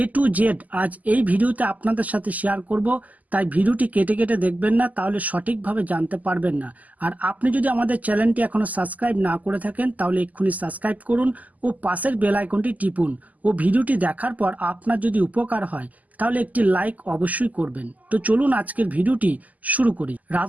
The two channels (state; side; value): late; left; 0.078 ms